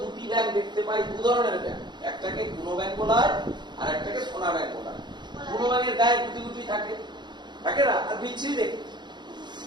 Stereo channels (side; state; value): left; late; 0.21 ms